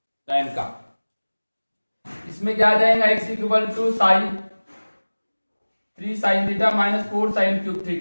tan का। इसमें क्या आ जाएगा, x equal to sine 3 sine theta minus 4 sine cube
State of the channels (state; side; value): inverted; both; correlation -1.00